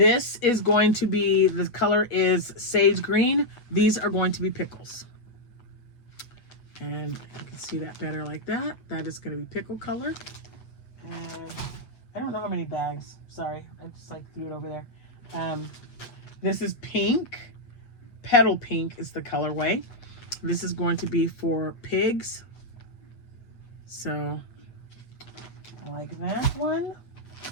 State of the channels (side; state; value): right; late; 8.3 ms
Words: is going to be, the color is sage green. These are going to be pickles. And you can see that better like that. That is going to be pickle color. And I don't know how many bags. Sorry, I just like threw it over there. This is pink. Petal pink is the colorway. This is going to be for pigs. So I like that one.